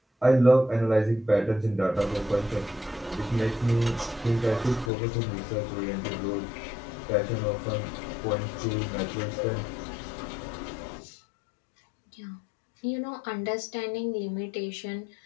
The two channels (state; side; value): drops out; right; at 4.9 s